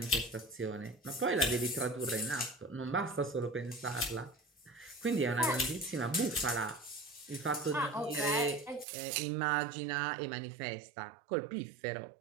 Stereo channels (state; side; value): drops out; left; at 8.8 s